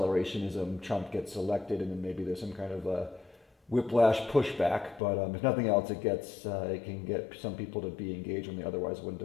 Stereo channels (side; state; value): right; drops out; at 5.0 s